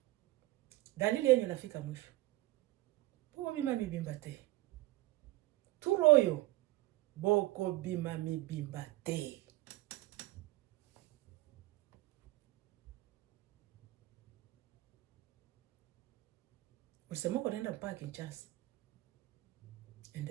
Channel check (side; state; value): left; quieter; 18.2 dB